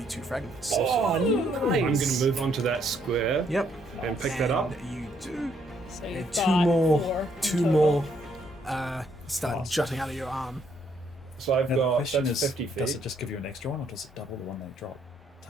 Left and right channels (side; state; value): both; normal; correlation 0.70